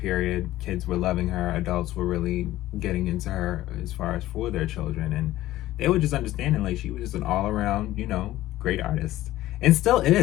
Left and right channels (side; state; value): right; quieter; 15.4 dB